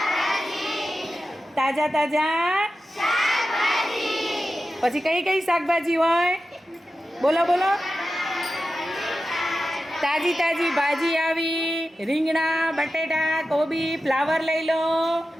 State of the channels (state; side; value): normal; both; correlation 0.92